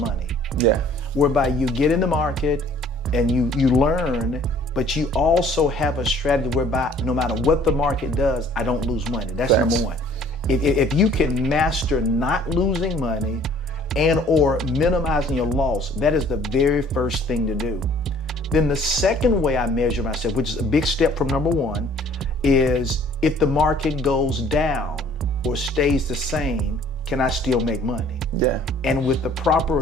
Yeah. Whereby you get in the market and you learn, but you also have a strategy whereby no matter what the market does, I don't lose money. That's Thanks. number one. If you can master not losing money and or minimizing your loss, that is the very first thing to do. Then the second way I measure myself, which is a big step from number one, is if the market goes down or stays the same, can I still make money? Yeah. And with the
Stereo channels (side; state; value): both; normal; correlation 0.55